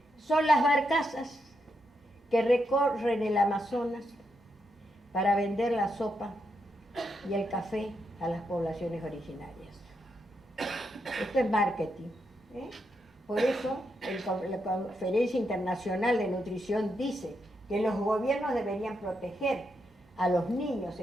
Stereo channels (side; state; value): both; normal; correlation 0.82